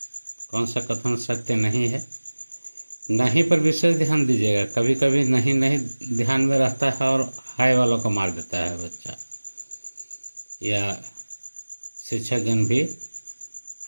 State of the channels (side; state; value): both; inverted; correlation -1.00